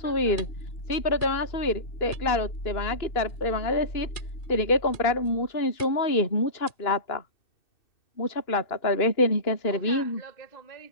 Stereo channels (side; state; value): right; late; 2.6 ms